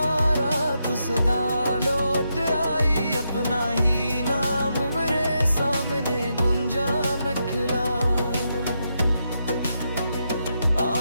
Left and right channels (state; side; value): inverted; both; correlation -0.83